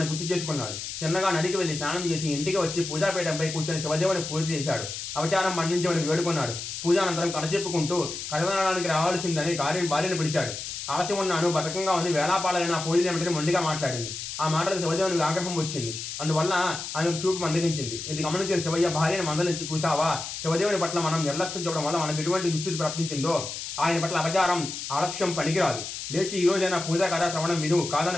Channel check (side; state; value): left; noise; hiss, 7 dB below the sound